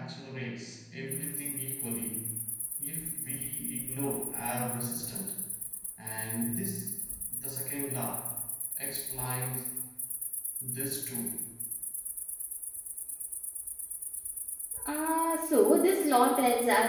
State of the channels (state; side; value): identical; both; correlation 1.00